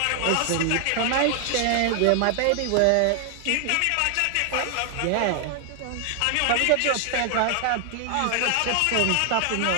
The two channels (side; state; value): both; different; correlation 0.00